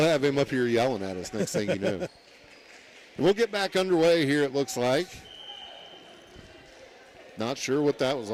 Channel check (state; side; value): identical; both; correlation 1.00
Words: have him up here yelling at us next thing you know. And we'll get back underway here, it looks like. Not sure what that was